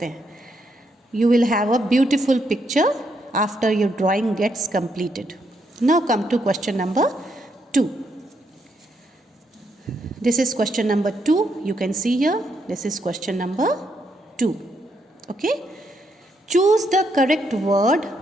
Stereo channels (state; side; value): normal; both; correlation 0.77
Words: हैं. You will have a beautiful picture after your drawing gets completed. Now come to question number 2. This is question number 2. You can see here. This is question number 2. Okay. Choose the correct word